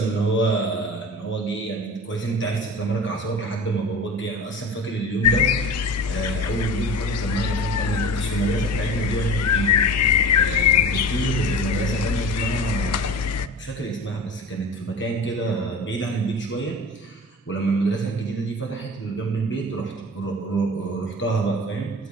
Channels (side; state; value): both; normal; correlation 0.35